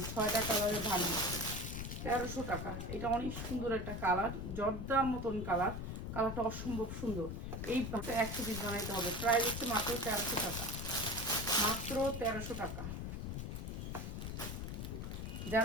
6টা কালারের ভান্ডিল, 1300 টাকা। এটা অনেক সুন্দর একটা কালার, জর্দার মতন কালার। কালারটা অসম্ভব সুন্দর। এই 100 পিস বানাইতে হবে। প্রাইস হচ্ছে মাত্র 1300 টাকা, মাত্র 1300 টাকা।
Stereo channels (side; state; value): left; noise; rumble, 5 dB below the sound